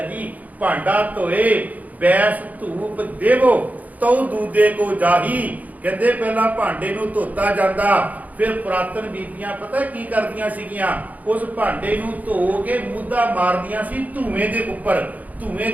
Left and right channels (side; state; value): left; late; 0.077 ms